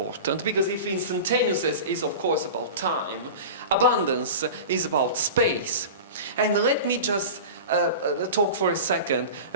because if instantaneousness is of course about time, abundance is about space. And let me just talk for a second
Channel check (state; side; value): inverted; both; correlation -0.32